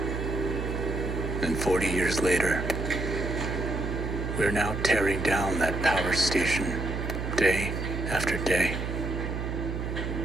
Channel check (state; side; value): noise; right; hum, 3 dB below the sound